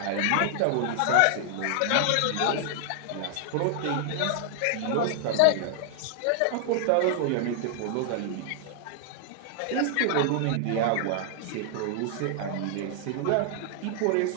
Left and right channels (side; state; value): both; different; correlation 0.00